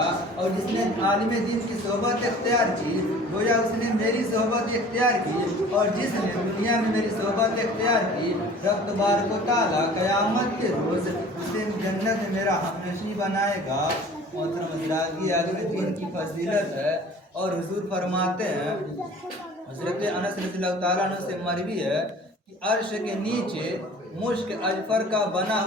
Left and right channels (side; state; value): both; normal; correlation 0.46